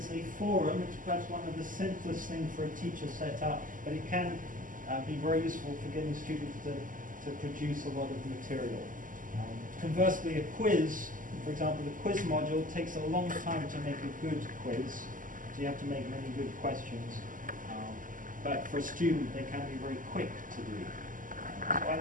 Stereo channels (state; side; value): late; left; 0.38 ms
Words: a forum. It's perhaps one of the simplest things for a teacher set up, but it can be very useful for getting students to produce a lot of material. Conversely, a quiz, for example, the quiz module takes a long time to make a good quiz. So you have to make many good questions. But for a student, they can be very quick to do. So I